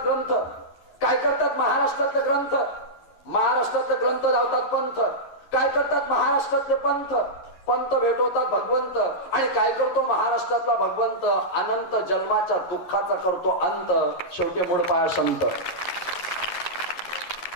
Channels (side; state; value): right; late; 11 ms